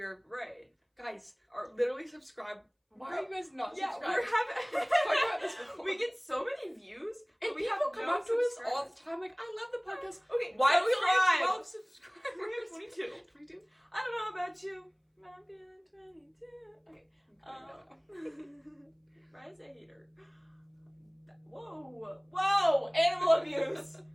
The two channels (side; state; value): both; identical; correlation 1.00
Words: right, guys, are literally subscribe. Why are you guys not subscribed? Yeah, we're Let's talk about this before. we get so many views, and we people have come no up to us all the subscribers. time, like, I love the podcast. Okay, Why do we only have 12 subscribers? We have 22. 22? I don't know about you, but I'm feeling 22. Okay. Ryan's a hater. Whoa! Animal abuse.